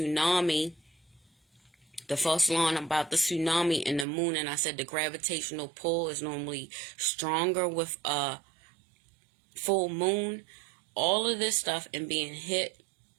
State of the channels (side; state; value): left; drops out; at 4.0 s